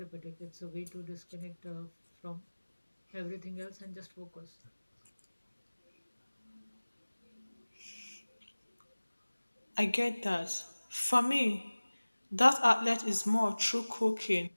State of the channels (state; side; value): inverted; both; correlation -1.00